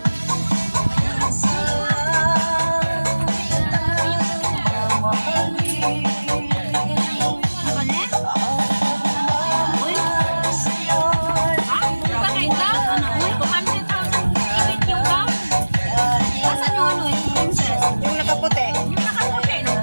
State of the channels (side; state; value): both; inverted; correlation -1.00